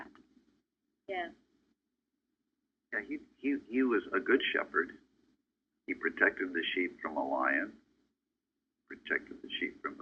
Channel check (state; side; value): identical; both; correlation 1.00